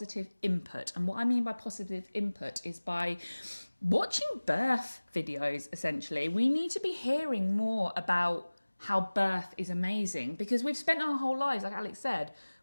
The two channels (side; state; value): both; inverted; correlation -1.00